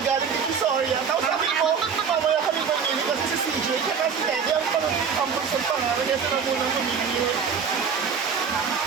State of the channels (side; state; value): left; quieter; 6.3 dB